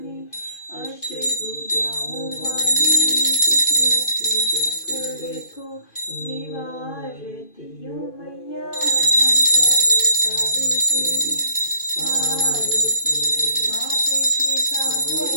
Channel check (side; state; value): right; late; 2.5 ms